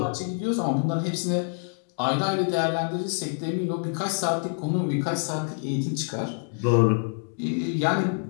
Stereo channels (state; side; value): silent; right; 61 dB below the other